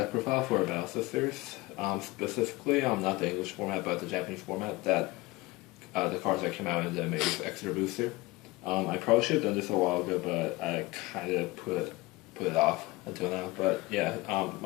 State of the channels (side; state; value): right; quieter; 21.4 dB